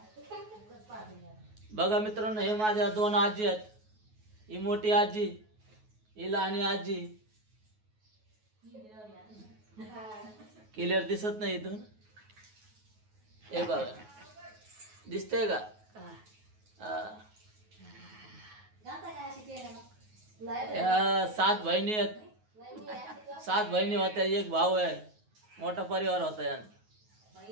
बघा मित्रांनो, हे माझ्या दोन आजी आहेत. ही मोठी आजी, ही लहानी आजी. क्लिअर दिसत नाही इथून. हे बघा, दिसतंय का? या 7 बहिणी आहेत. 7 बहिणी होत्या, एक भाऊ आहे. मोठा परिवार होता यांचा.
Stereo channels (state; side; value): late; left; 9.4 ms